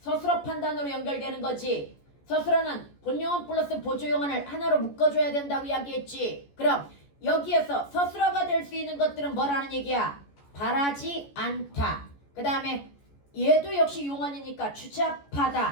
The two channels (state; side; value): late; right; 14 ms